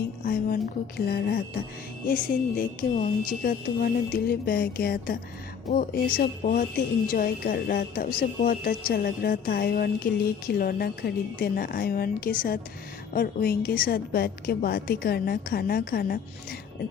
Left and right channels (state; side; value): quieter; right; 7.0 dB